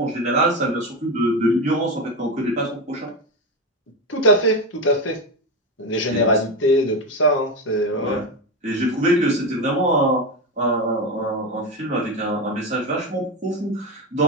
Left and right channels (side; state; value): both; normal; correlation 0.16